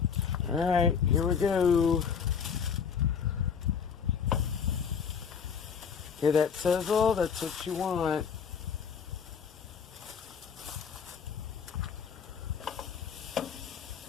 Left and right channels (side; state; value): right; quieter; 6.8 dB